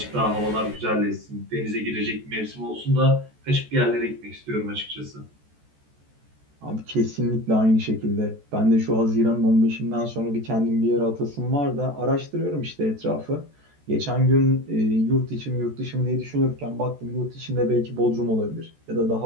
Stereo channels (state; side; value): late; left; 14 ms